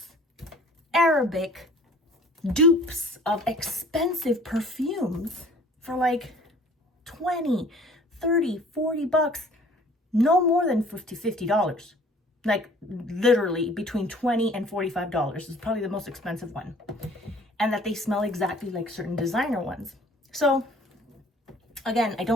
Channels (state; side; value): normal; both; correlation 0.51